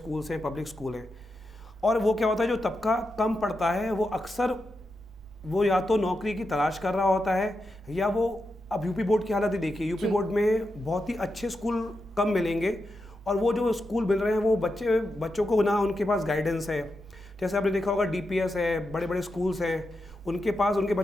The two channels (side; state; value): both; normal; correlation 0.87